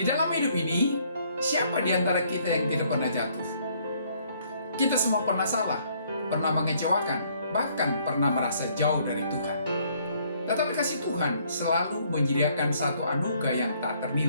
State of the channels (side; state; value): both; inverted; correlation -0.65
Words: dalam hidup ini, siapa di antara kita yang tidak pernah jatuh? Kita semua pernah salah, pernah mengecewakan, bahkan pernah merasa jauh dari Tuhan. Tetapi kasih Tuhan selalu menyediakan satu anugerah yang tak